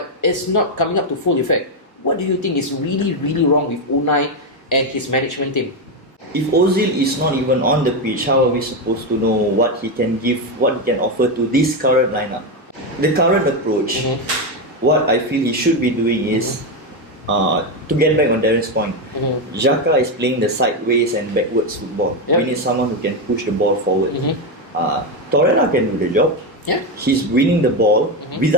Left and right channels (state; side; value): normal; both; correlation 0.09